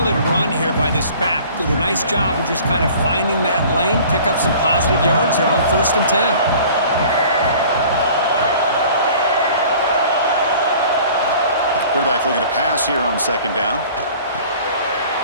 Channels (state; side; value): inverted; both; correlation -0.48